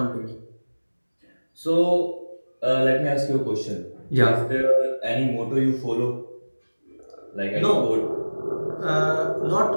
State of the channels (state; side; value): inverted; both; correlation -1.00